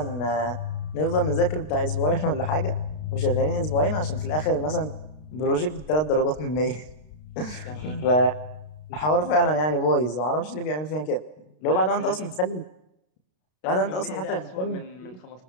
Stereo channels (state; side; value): late; right; 32 ms